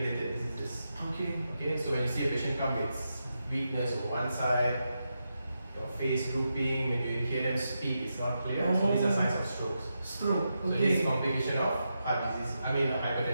diseases. Okay. Okay, so when you see a patient come with weakness on one side, your face drooping, when you hear them speak, it's not clear. So these are signs of strokes. Stroke. So this is a complication of heart disease. I mean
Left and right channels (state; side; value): inverted; both; correlation -0.87